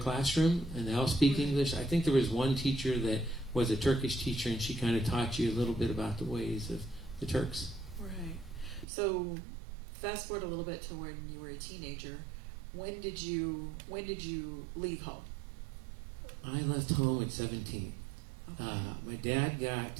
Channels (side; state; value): left; drops out; at 8.8 s